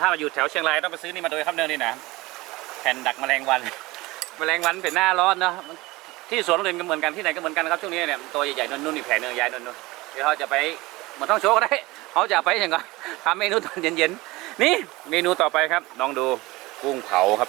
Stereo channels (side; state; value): left; quieter; 21.0 dB